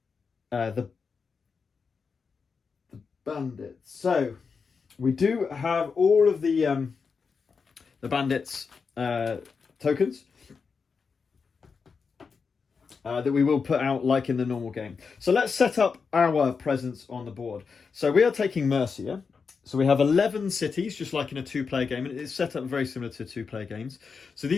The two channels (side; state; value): right; quieter; 5.3 dB